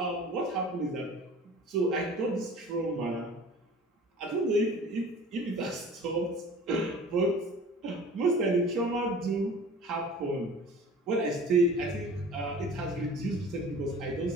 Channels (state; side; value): normal; both; correlation 0.43